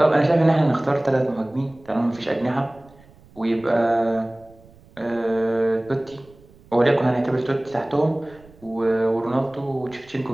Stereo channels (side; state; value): right; noise; rumble, 26 dB below the sound